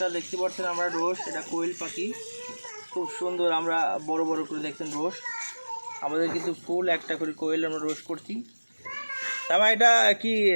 দেখতে পাচ্ছেন আমরা রোজ, এটা কোয়েল পাখি, খুব সুন্দর। আমরা বড় বড় করে দেখছেন রোজ, আমাদের কিন্তু ফুল একটা করে কোয়েল আমরা রোজ করছি। তারপর এটা কি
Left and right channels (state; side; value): inverted; both; correlation -1.00